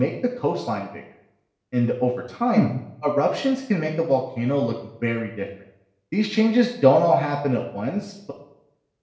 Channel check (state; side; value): identical; both; correlation 1.00